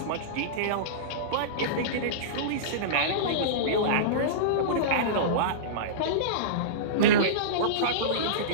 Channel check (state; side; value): different; both; correlation -0.05